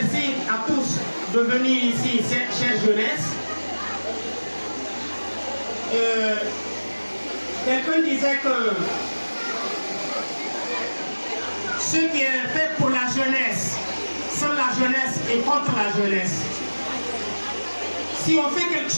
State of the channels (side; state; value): both; inverted; correlation -1.00